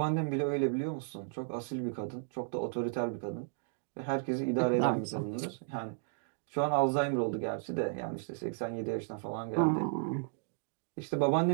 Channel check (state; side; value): silent; left; digital silence